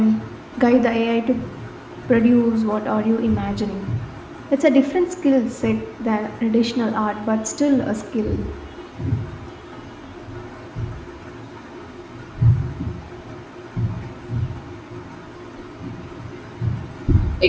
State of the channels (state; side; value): identical; both; correlation 1.00